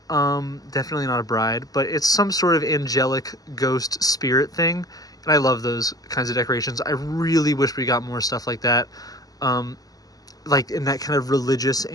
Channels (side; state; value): right; late; 0.18 ms